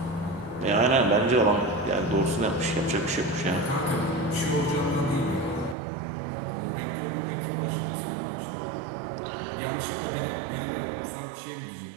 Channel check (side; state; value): left; drops out; at 5.8 s